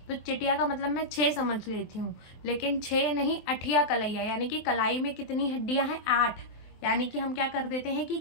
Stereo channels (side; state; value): right; late; 24 ms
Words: तो चिटिया का मतलब मैं 6 समझ लेती हूँ, लेकिन 6 नहीं, अठिया कलैया, यानी कि कलाई में कितनी हड्डियां हैं, 8। यानी कि हम क्या कर देते हैं कि